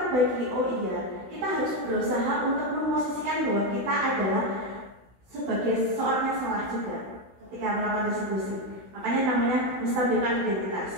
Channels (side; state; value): left; late; 16 ms